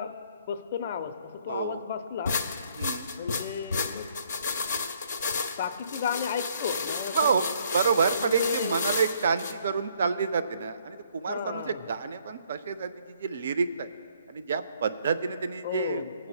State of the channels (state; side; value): inverted; both; correlation -0.65